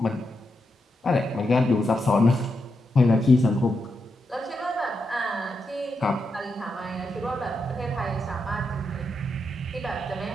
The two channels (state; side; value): normal; both; correlation 0.85